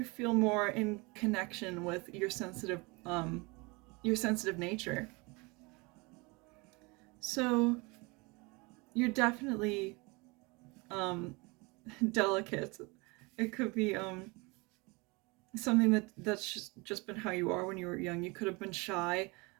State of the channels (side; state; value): left; quieter; 27.0 dB